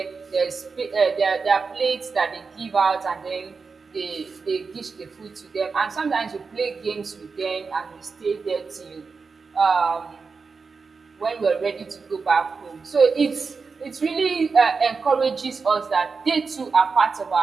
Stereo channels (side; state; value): left; quieter; 4.8 dB